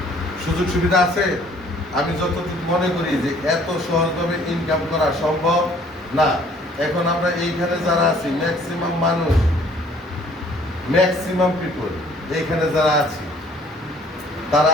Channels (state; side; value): normal; both; correlation 0.58